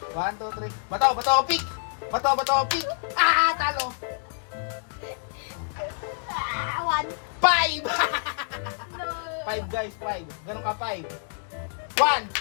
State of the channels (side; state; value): right; silent; digital silence